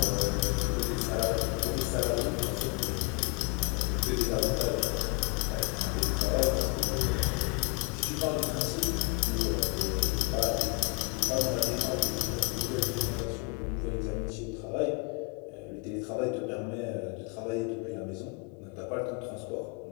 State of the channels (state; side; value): quieter; right; 27.8 dB